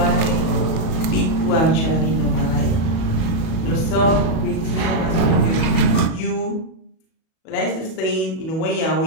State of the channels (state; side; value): late; right; 37 ms